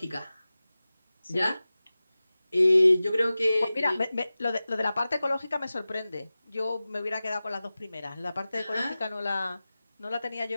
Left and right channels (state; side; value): inverted; both; correlation -0.96